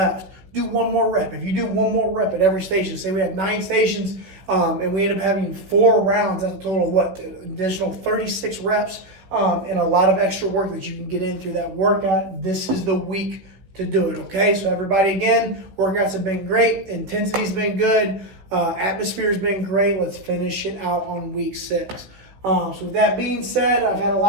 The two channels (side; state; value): left; late; 16 ms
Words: Do one more rep. If you do one more rep at every station, say we have 9 stations and we end up having 4 rounds, that's a total of what? Additional 36 reps and a lot of extra work that you can get in through that workout. This is the week to do it, okay? So everybody, again, workouts have been great. Intensity's been good. Atmosphere's been great. Let's finish it out on week 6. So with that being said, I've had a